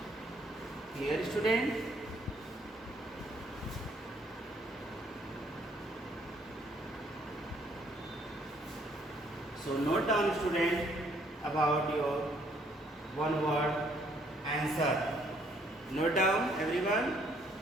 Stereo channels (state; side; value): normal; both; correlation 0.66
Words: Clear, student? So note down, student, about your one word answer. Note down, everyone,